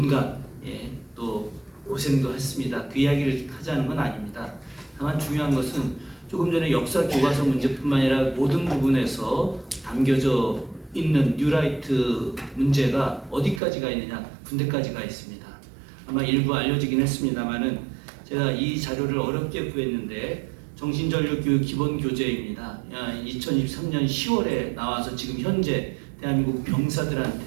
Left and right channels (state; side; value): drops out; left; at 13.6 s